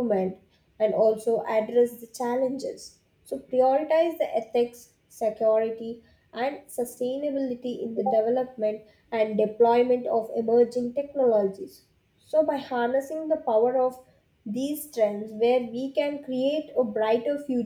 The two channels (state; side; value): identical; both; correlation 1.00